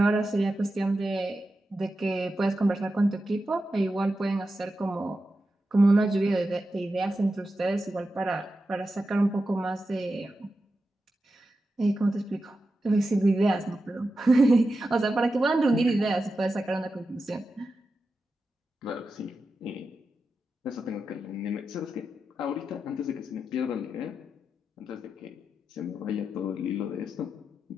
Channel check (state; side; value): normal; both; correlation 0.90